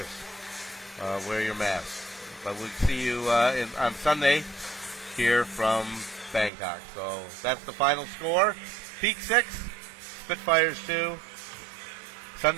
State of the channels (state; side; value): drops out; left; at 6.5 s